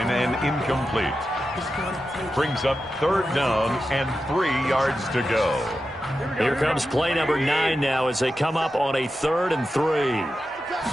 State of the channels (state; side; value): normal; both; correlation 0.91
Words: and incomplete. Brings up third down and 3 yards to go. Here comes play number 9 now as they come up on a 3rd and 3.